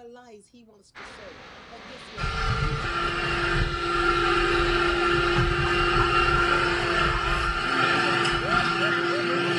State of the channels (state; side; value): identical; both; correlation 1.00